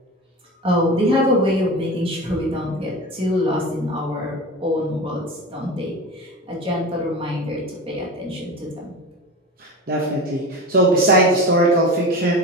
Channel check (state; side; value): normal; both; correlation 0.30